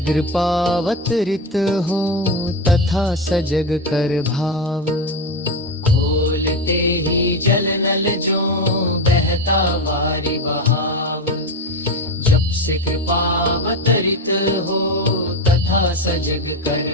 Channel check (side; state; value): both; normal; correlation 0.16